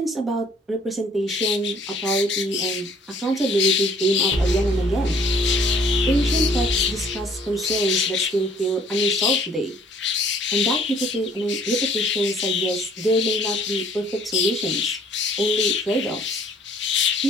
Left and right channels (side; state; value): both; normal; correlation 0.58